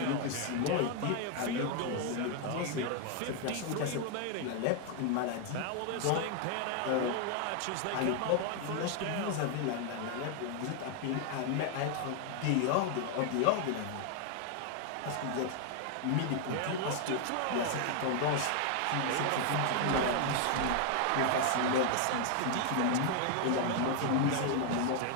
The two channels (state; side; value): different; both; correlation 0.00